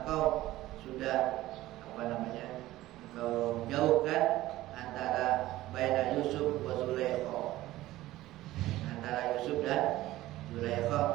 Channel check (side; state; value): left; quieter; 16.2 dB